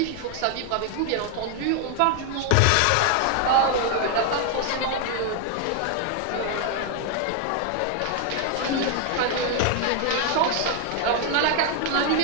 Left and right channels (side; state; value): both; different; correlation 0.00